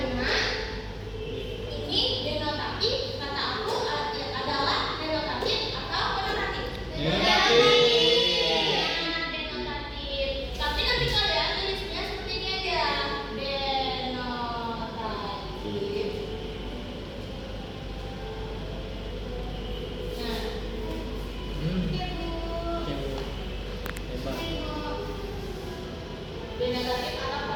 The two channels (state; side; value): identical; both; correlation 1.00